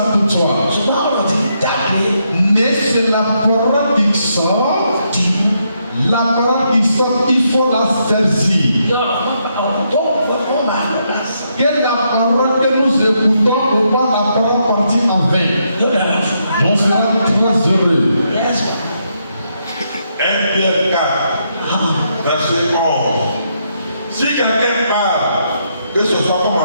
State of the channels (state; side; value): inverted; both; correlation -0.78